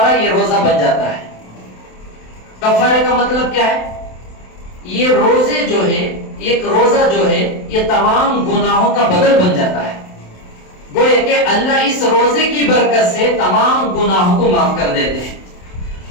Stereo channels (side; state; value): right; late; 27 ms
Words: یہ روزہ بن جاتا ہے. کفارے کا مطلب کیا ہے؟ یہ روزے جو ہے، ایک روزہ جو ہے، یہ تمام گناہوں کا بدل بن جاتا ہے. گویا کہ اللہ اس روزے کی برکت سے تمام گناہوں کو معاف کر دیتے ہیں.